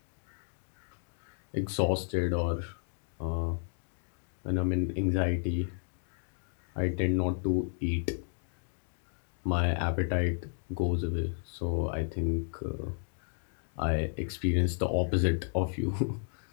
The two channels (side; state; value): right; silent; digital silence